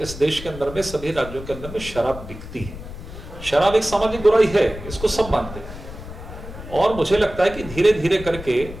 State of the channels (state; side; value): noise; left; rumble, 12 dB below the sound